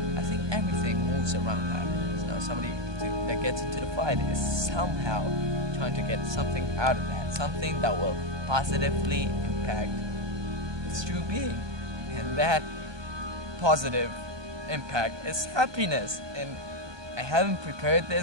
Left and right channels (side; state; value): left; late; 1.2 ms